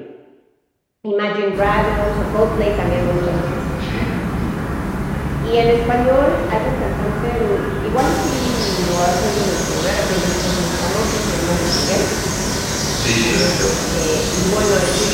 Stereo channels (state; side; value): identical; both; correlation 1.00